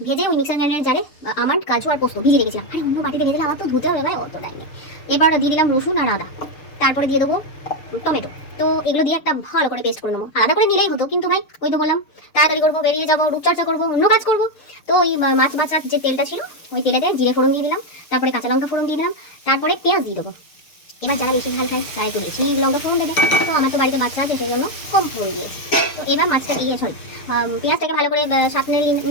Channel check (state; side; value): late; right; 6.7 ms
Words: ভেজে ওই মিক্সার গ্রাইন্ডারের জারে আমার কাজু আর পোস্ত ভিজিয়ে রেখেছিলাম। আরে অন্য বাটিতে ভেজে আমার তো ধুতে হবে ভাই, অত টাইম নেই। এবার দিয়ে দিলাম রসুন আর আদা, তারপরে দিয়ে দেবো টমেটো। তো এগুলো দিয়ে একটা ভালো করে পেস্ট করে নেবো। আলাদা করে নিলেই হতো, কিন্তু ভাই ওই তো বললাম তাড়াতাড়ি করবো, বেরিয়ে যাবো, রূপচর্চা করবো, অন্য কাজ করবো। তো ওই মাছ বাছার যে তেলটা ছিল ওই তেলেতে জিরে ফোড়ন দিয়ে দিলাম, তারপরে কাঁচা লঙ্কা ফোড়ন দিয়ে দিলাম, তারপরে পেঁয়াজ দিয়ে দেবো। এবার যারা বেশি ঝাল খায় তারা একটু বেশি লঙ্কা ফোড়ন দেবে। তো আমার তো বাড়িতে বাচ্চা আছে সেই জন্য কম ফোড়ন দিয়েছি। তো এবার মাছটা দিয়ে পেঁয়াজটাকে ভালো করে সাঁতলে